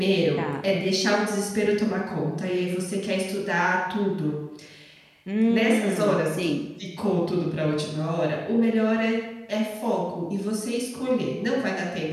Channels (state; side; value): identical; both; correlation 1.00